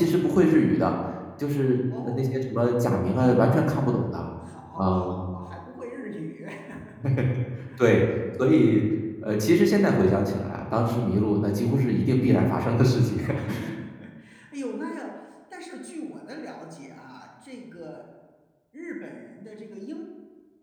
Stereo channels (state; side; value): identical; both; correlation 1.00